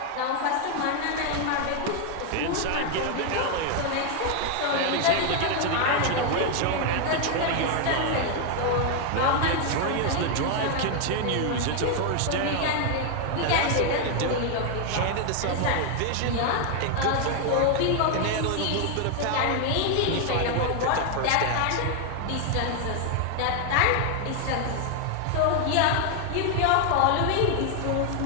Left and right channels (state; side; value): different; both; correlation 0.01